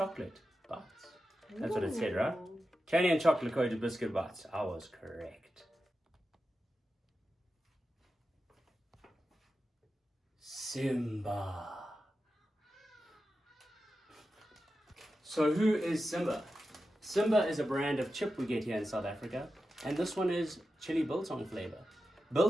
bites. That's what it said, right? Candy and chocolate coated biscuit bites. I was correct. Simba. So who is Simba? Simba is a brand of chip we get here in South Africa, and this one is chili biltong flavor.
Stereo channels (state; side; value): normal; both; correlation 0.91